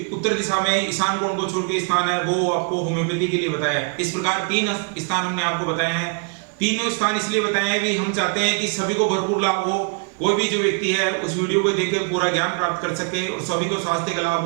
उत्तर दिशा में ईशान कोण को छोड़ के स्थान है वो आपको होम्योपैथी के लिए बताया है। इस प्रकार 3 स्थान हमने आपको बताए हैं। तीनों स्थान इसलिए बताए हैं भी हम चाहते हैं कि सभी को भरपूर लाभ हो, कोई भी जो व्यक्ति है उस वीडियो को देखकर पूरा ज्ञान प्राप्त कर सके और सभी को स्वास्थ्य का लाभ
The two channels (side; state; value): left; quieter; 36.6 dB